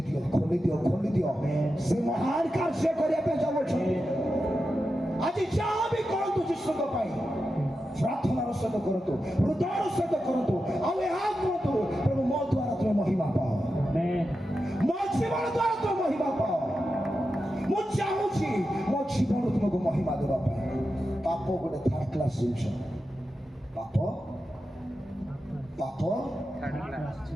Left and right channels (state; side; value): normal; both; correlation 0.90